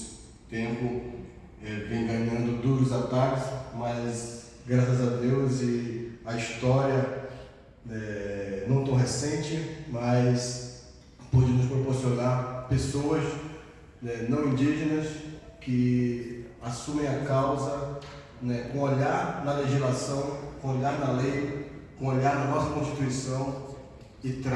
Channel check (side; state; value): both; identical; correlation 1.00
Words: tempos vem ganhando duros ataques, mas graças a Deus e a história não tão recente, mas pôde nos proporcionar pessoas não indígenas que assumem a causa com olhar na legislação, com olhar na lei, com olhar na nossa Constituição e